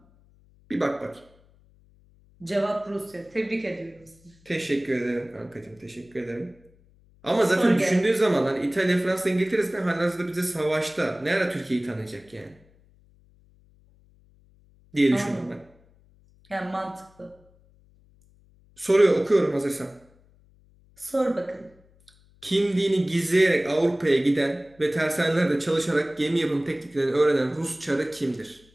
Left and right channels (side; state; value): left; noise; hum, 30 dB below the sound